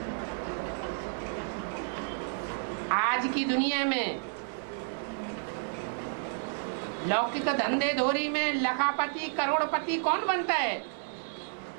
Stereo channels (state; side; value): silent; left; 57 dB below the other